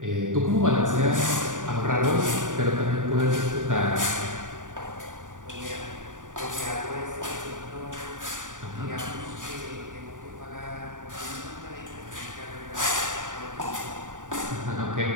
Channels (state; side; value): late; left; 0.87 ms